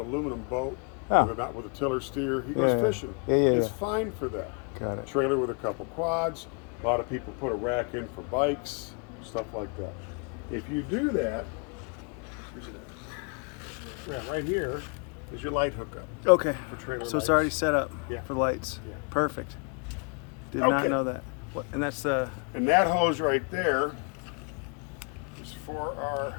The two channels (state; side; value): quieter; right; 36.4 dB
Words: aluminum boat, Oh. not with a tiller steer. He goes Yeah, yeah. fishing. Yeah, it's yeah. fine for that. Got it. Trailer with a couple quads. A lot of people put a rack in for bikes, stuff like that. If you do that, right here is your light hookup. Okay. For trailer So it's lights. already set up Yeah. for lights. Yeah. Perfect. Did not Okay. know that. What, and that's the. And that hose right there is for our